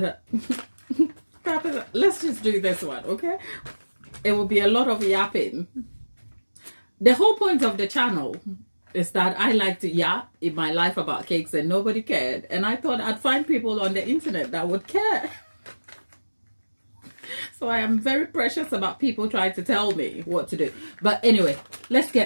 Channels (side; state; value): both; inverted; correlation -1.00